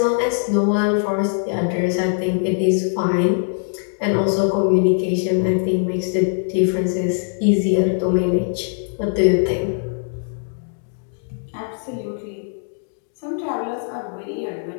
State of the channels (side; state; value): right; silent; digital silence